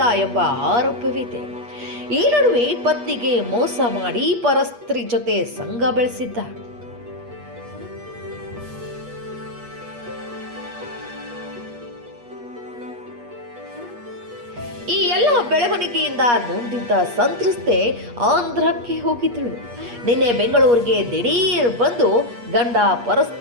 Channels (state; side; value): late; left; 8.4 ms